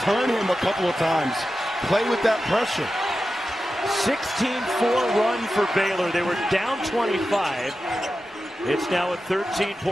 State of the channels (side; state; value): both; normal; correlation 0.92